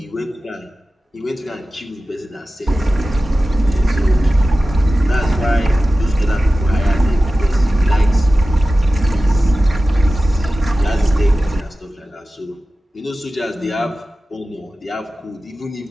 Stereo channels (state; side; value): normal; both; correlation 0.95